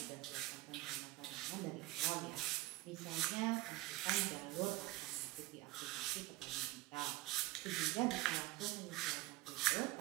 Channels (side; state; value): left; quieter; 19.1 dB